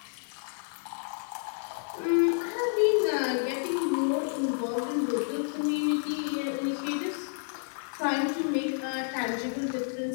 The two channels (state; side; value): silent; right; digital silence